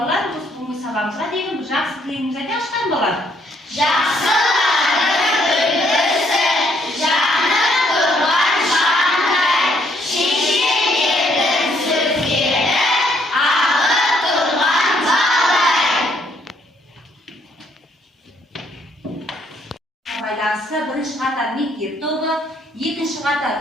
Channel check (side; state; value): both; normal; correlation 0.69